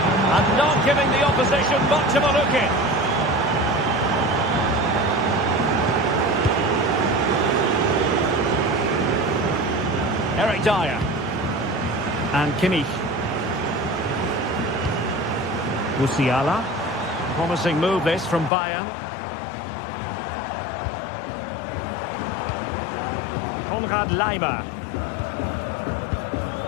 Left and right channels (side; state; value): right; drops out; at 18.5 s